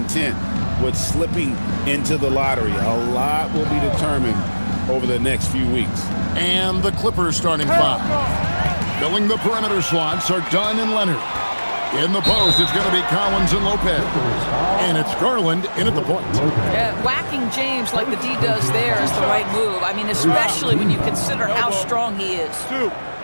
with slipping into the lottery. A lot will be determined over the next few weeks. And the Clippers starting five. Filling the perimeter slots are Dunn and Leonard. In the post, it's going to be Collins and Lopez. And it's Garland in at the point. Yeah, whacking James like the D does there is the right move. I mean, especially when you consider how strong he is.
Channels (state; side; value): inverted; both; correlation -1.00